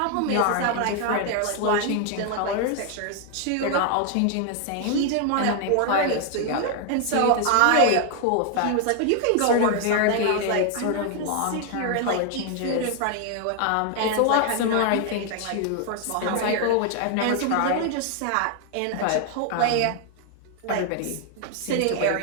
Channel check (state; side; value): different; both; correlation 0.00